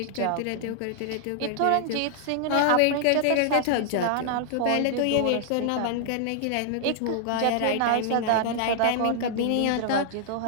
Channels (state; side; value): different; both; correlation -0.01